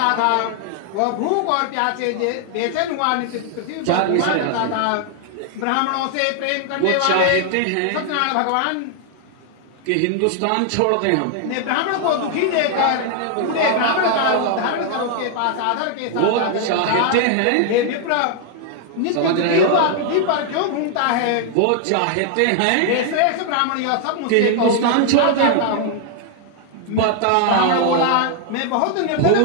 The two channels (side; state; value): both; different; correlation 0.00